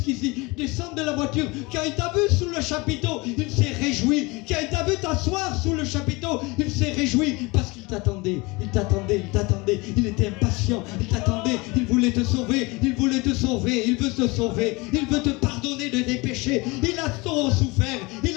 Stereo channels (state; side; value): quieter; right; 24.8 dB